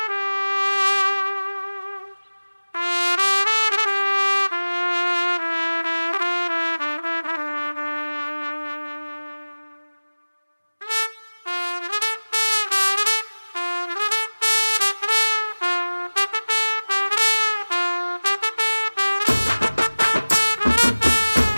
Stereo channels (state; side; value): inverted; both; correlation -1.00